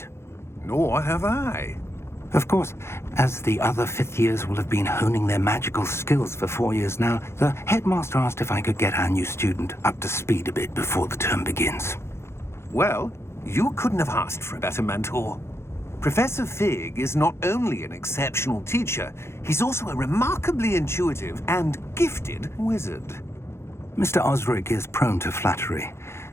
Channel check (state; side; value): late; right; 0.12 ms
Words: Nor have I. Of course, as the other 5th years will have been honing their magical skills for 4 years now, the headmaster asked if I could get our new student up to speed a bit before the term begins. Well, you couldn't have asked for a better mentor. Professor Fig is not only an exceptional teacher, he's also a remarkably intuitive and gifted wizard. Mr. Osric is prone to flattery.